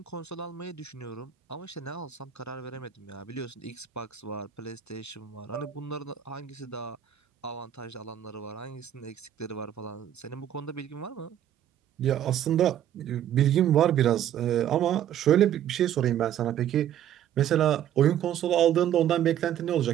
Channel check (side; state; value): left; quieter; 10.6 dB